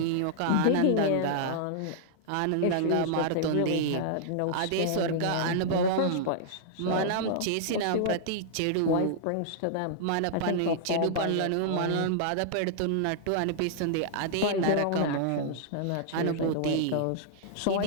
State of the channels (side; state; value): both; different; correlation -0.01